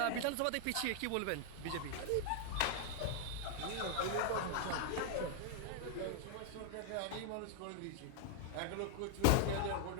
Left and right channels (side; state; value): both; different; correlation 0.00